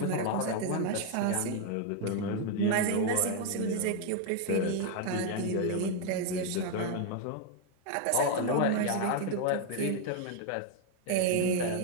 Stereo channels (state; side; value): different; both; correlation 0.01